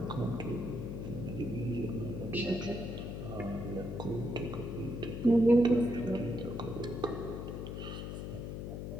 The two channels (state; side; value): noise; left; hum, 5 dB below the sound